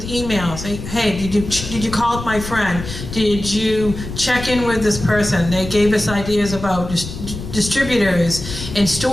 emails. Hey, did you call up my friend? Did you check in with this person? They gave us ideas about distributors and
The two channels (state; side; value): noise; left; rumble, 9 dB below the sound